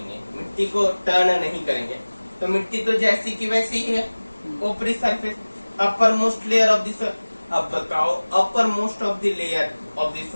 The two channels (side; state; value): both; inverted; correlation -1.00